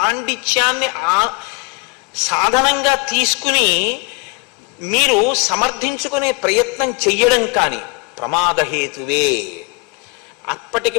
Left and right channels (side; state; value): right; quieter; 29.3 dB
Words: సాధనంగా తీసుకుని మీరు సమర్థించుకునే ప్రయత్నం చెయ్యడం కానీ ప్రమాదహేతువే. అప్పటికి